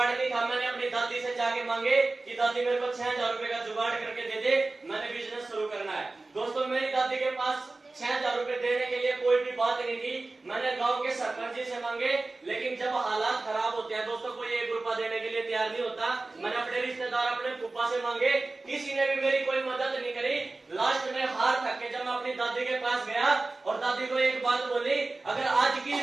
नहीं था। मैंने अपनी दादी से जाके मांगे कि दादी मेरे को 6,000 रुपए का जुगाड़ करके दे दे, मैंने बिजनेस शुरू करना है। दोस्तों मेरी दादी के पास 6,000 रुपए देने के लिए कोई भी बात नहीं थी। मैंने गांव के सरपंच जी से मांगे, लेकिन जब हालात खराब होते हैं दोस्तों, कोई 1 रुपया देने के लिए तैयार नहीं होता। मैंने अपने रिश्तेदार, अपने फूफा से मांगे, किसी ने भी मेरी कोई मदद नहीं करी। लास्ट में हार थक के जब मैं अपनी दादी के पास गया और दादी को एक बात बोली, अगर आज की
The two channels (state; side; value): quieter; left; 3.3 dB